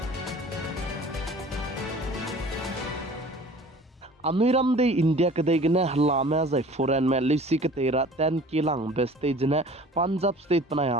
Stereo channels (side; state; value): both; normal; correlation 0.46